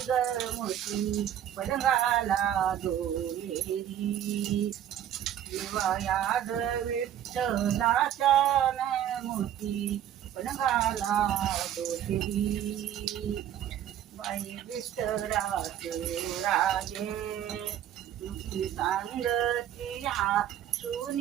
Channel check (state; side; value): quieter; left; 10.8 dB